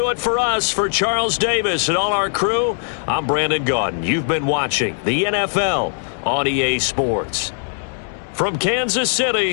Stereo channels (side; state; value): right; silent; digital silence